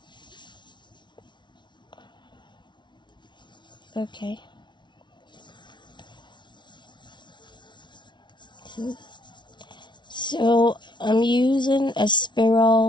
Okay. So I'm using a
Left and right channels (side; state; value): right; late; 0.22 ms